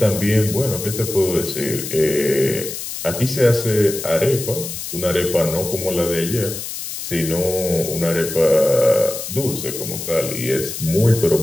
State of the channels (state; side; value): noise; left; hiss, 7 dB below the sound